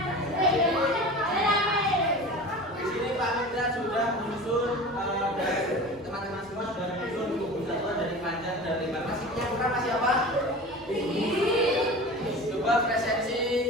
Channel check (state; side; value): normal; both; correlation 0.35